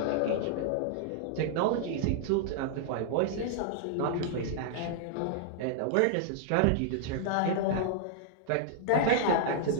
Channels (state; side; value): different; both; correlation -0.01